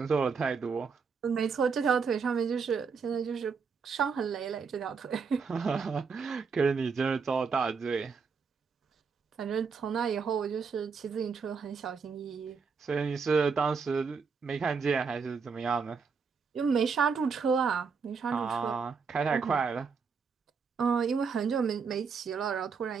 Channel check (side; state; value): left; quieter; 5.5 dB